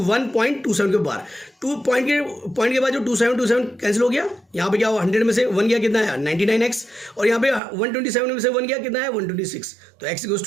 1.27 के बार, 2 पॉइंट के बाद जो 27 कैंसिल हो गया, यहाँ पे क्या हुआ, 100 में से 1 गया कितना है 99x, और यहाँ पे 127 में से 1 गया कितना है 126, तो x इक्वल्स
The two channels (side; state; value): left; drops out; at 7.6 s